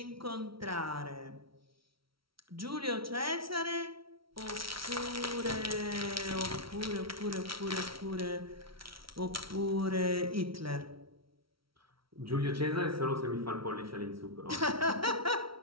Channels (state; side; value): late; left; 0.75 ms